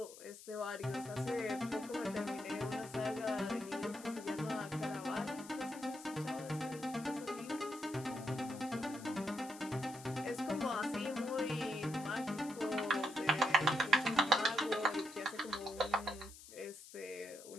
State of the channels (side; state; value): left; noise; hiss, 16 dB below the sound